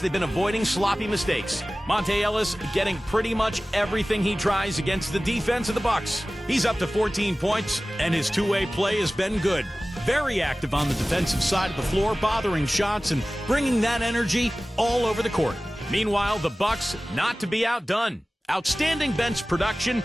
been avoiding sloppy mistakes. Monte Ellis getting pretty much everything he tries against the defense of the Bucks. He's up to 14 points, and his two-way play has been good. Very active on the defensive side of the floor, bothering shots and bringing that energy all over the court. Meanwhile, the Bucks not to be outdone. Outstanding bench production.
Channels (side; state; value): both; normal; correlation 0.97